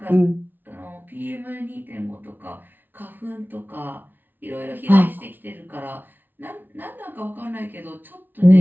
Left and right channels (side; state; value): left; late; 0.090 ms